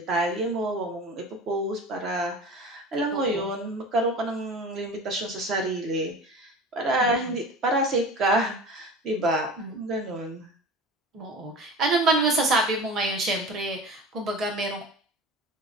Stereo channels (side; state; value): both; normal; correlation 0.35